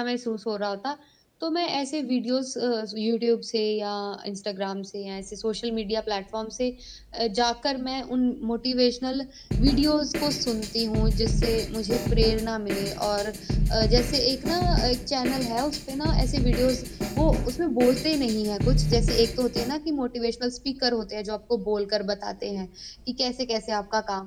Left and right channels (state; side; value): identical; both; correlation 1.00